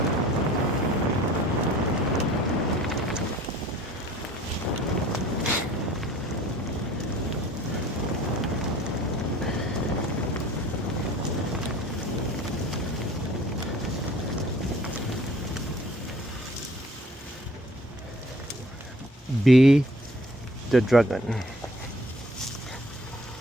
Be the dragon.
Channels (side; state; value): both; normal; correlation 0.52